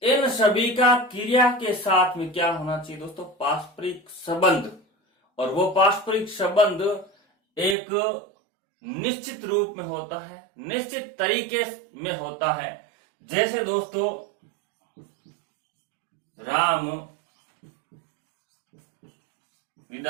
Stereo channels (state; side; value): drops out; left; at 7.8 s